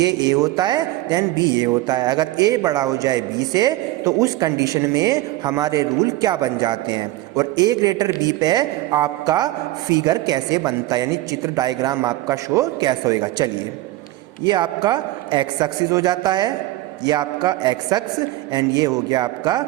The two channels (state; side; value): quieter; left; 17.3 dB